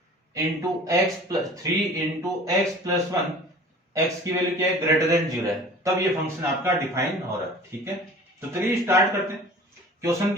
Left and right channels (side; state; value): both; normal; correlation 0.44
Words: into x plus 3 into x plus 1, x की वैल्यू क्या है, ग्रेटर देन 0 है, तब ये फंक्शन आपका डिफाइन हो रहा है। ठीक है, तो चलिए स्टार्ट करते हैं। क्वेश्चन